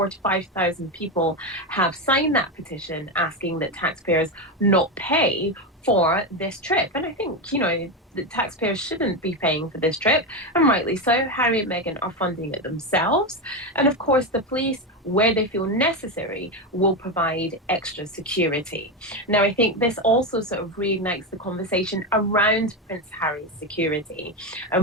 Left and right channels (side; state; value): both; normal; correlation 0.13